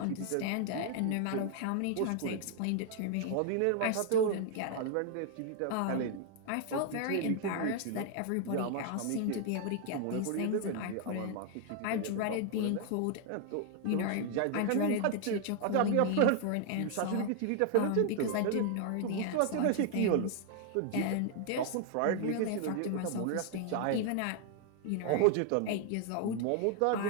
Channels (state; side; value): different; both; correlation 0.00